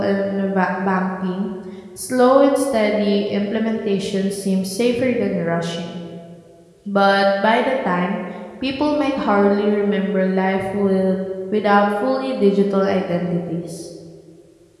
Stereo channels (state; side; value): identical; both; correlation 1.00